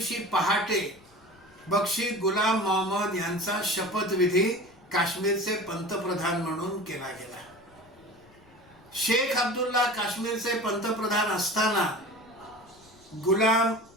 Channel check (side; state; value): left; noise; rumble, 29 dB below the sound